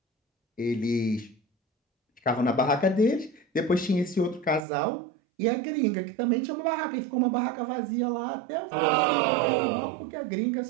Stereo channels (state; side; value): drops out; left; at 4.7 s